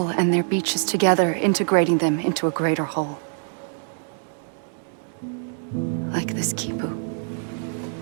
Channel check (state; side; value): silent; left; 62 dB below the other